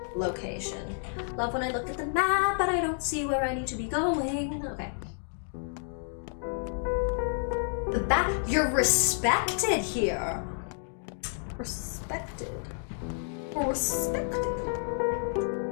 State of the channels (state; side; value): silent; right; 58 dB below the other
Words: location. Love when I look at the map, but I don't see where I need to be going. Okay. The back, you're respected here. Respected. Respected.